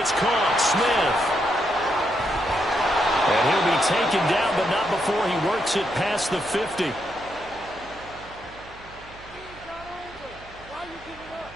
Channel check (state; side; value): noise; right; hum, 21 dB below the sound